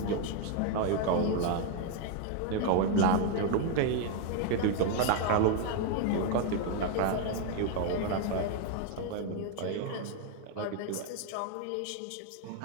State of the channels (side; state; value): both; different; correlation 0.01